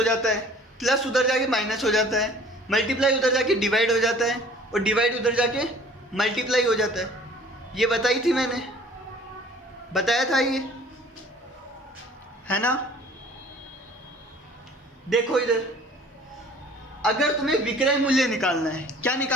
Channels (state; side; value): normal; both; correlation 0.51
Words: जाता है, प्लस उधर जाके माइनस हो जाता है, मल्टीप्लाई उधर जाके डिवाइड हो जाता है, और डिवाइड उधर जाके मल्टीप्लाई हो जाता है। ये बताई थी मैंने, बताया था ये, है ना। देखो इधर, अगर तुम्हें विक्रय मूल्य निकालना है, क्या